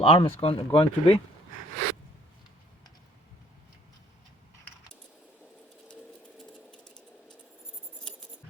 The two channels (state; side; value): normal; both; correlation 0.59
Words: arm is going to be.